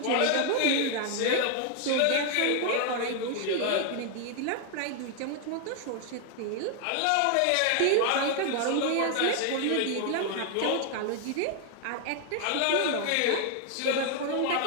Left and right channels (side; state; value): both; different; correlation 0.00